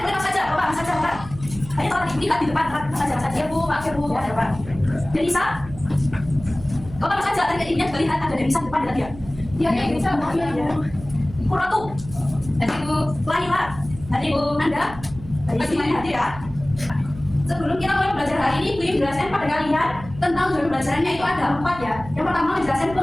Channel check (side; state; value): right; noise; hum, 15 dB below the sound